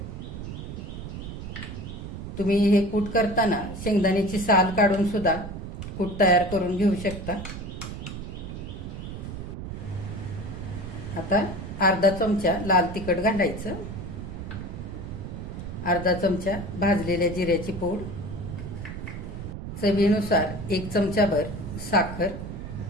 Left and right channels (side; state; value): right; noise; rumble, 8 dB below the sound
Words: तुम्ही हे कूट करताना शेंगदाण्याची साल काढून सुद्धा कूट तयार करून घेऊ शकता. आता अर्धा चमचा लाल तिखट घालायचं, अर्धा चमचा भाजलेल्या जिऱ्याची पूड, चवीनुसार 1 चमचाभर साखर.